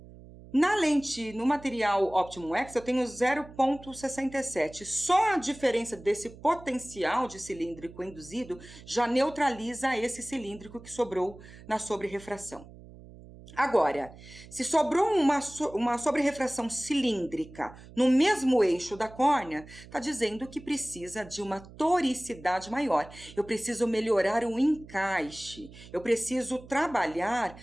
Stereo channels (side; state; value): right; noise; hum, 19 dB below the sound